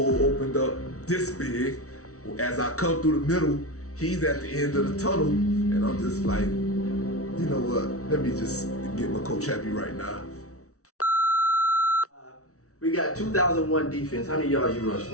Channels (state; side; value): late; right; 0.64 ms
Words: opened up this big. As I come through the middle, he's at the end of the tunnel, and I'm just like, you know what, let me just get my coach happy right now. We got 2001 defense. How many yards you rush